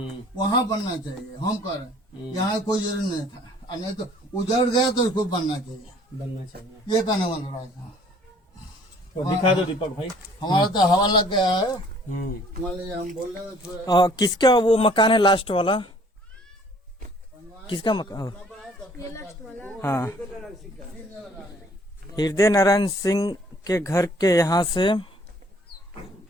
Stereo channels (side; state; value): both; normal; correlation 0.57